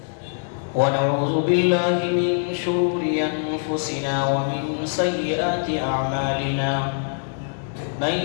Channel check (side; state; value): right; silent; 63 dB below the other